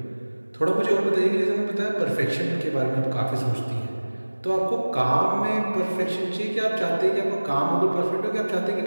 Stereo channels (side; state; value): both; inverted; correlation -1.00